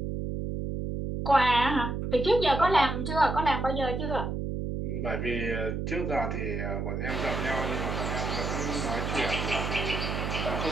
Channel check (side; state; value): right; noise; hum, 3 dB below the sound